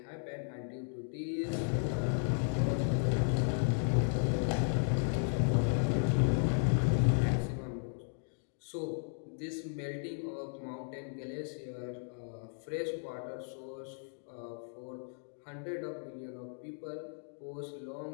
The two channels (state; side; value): silent; right; digital silence